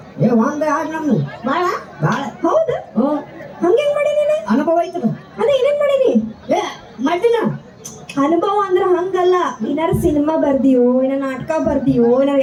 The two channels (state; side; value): identical; both; correlation 1.00